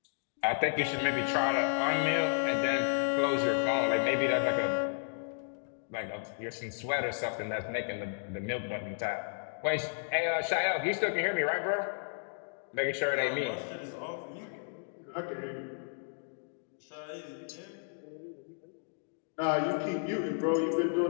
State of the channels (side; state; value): right; silent; digital silence